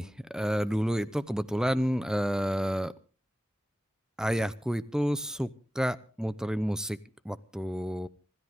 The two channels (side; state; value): both; normal; correlation 0.95